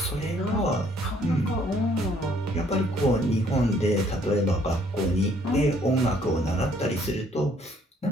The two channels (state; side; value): normal; both; correlation 0.63